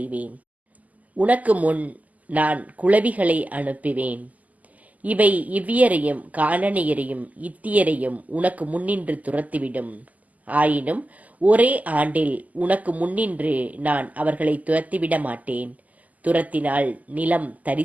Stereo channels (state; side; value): late; left; 0.077 ms